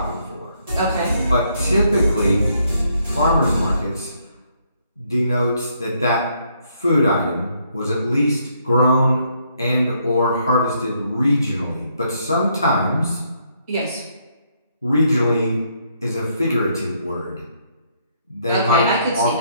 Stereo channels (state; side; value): inverted; both; correlation -0.72